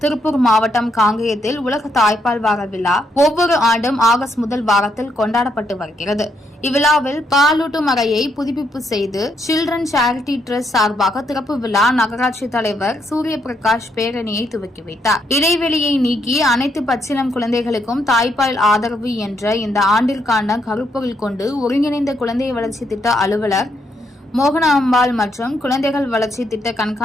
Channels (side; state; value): both; normal; correlation 0.76